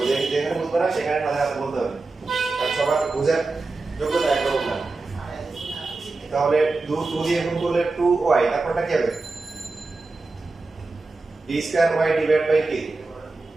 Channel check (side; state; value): left; quieter; 3.6 dB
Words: যেখানে বুঝবে না সেখানে সাথে সাথে বলতে হবে, আর সবার বুঝার যোগ্যতা একরকম না। তাহলে 2 দিয়ে গুণ করলে 2y, তারপরটা কি হবে? d square y divide by কি